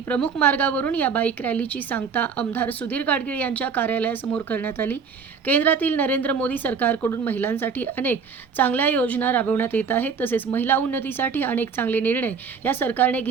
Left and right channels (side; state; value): left; quieter; 5.9 dB